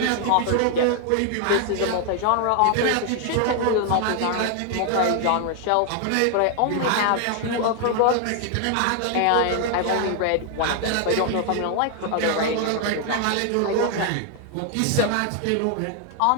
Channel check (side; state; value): both; different; correlation 0.00